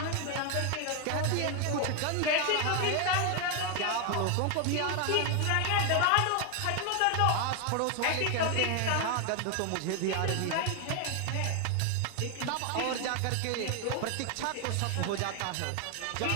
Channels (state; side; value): different; both; correlation 0.01